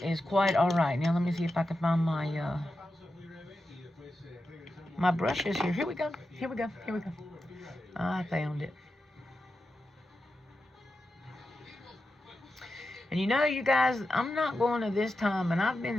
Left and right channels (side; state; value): both; normal; correlation 0.90